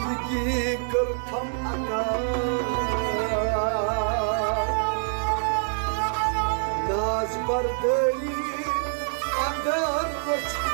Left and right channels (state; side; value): silent; left; digital silence